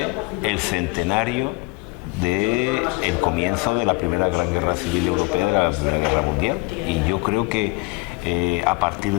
el centenario del comienzo de la primera gran guerra civil europea, de la Primera Guerra Mundial. Y yo creo que a partir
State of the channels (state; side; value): quieter; right; 24.9 dB